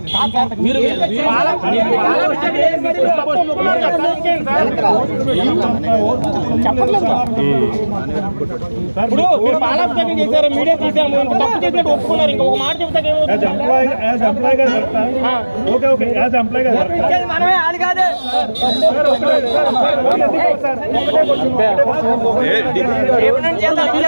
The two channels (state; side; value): inverted; both; correlation -1.00